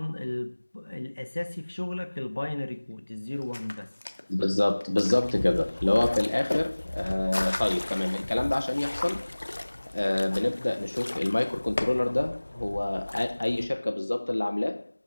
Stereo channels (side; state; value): both; inverted; correlation -1.00